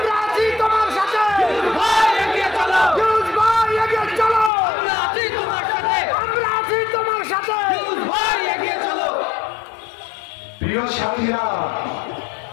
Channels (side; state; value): right; drops out; at 4.5 s